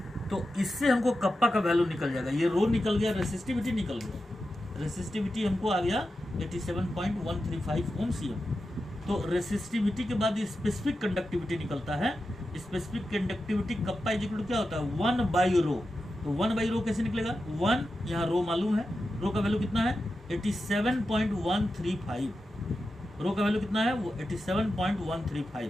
तो इससे हमको कप्पा का वैल्यू निकल जाएगा, ये रो निकल गया, रेसिस्टिविटी निकल गया, रेसिस्टिविटी हमको आ गया 87.135 ओम सीएम। तो रेसिस्टिविटी के बाद स्पेसिफिक कंडक्टिविटी निकलता है। Specific conductivity kappa is equal to क्या होता है 1/रो। तो 1/रो कैसे निकलेगा, 1 यहाँ रो मालूम है, रो का वैल्यू कितना है 87.135, रो का वैल्यू कितना है वो 87.135।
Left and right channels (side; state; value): both; normal; correlation 0.90